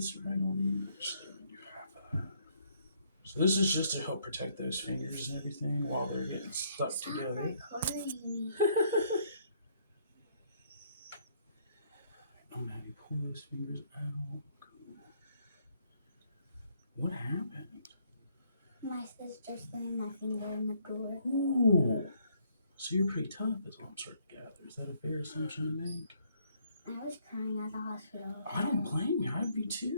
right on in. Actually, let me do half of that. So this is just to help protect those fingers and everything while they're getting stuck together. I'm going to have you pull those fingers out. Cool. What happened? My sister slammed my finger in the door. Ooh. So you're pretty tough is what I'm starting to gather. Is that a fair assumption to make? I was crying at the hospital. I don't blame you. I'd be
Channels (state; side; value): inverted; both; correlation -0.68